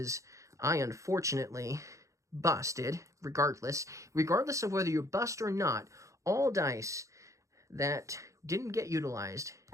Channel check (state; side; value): late; left; 0.15 ms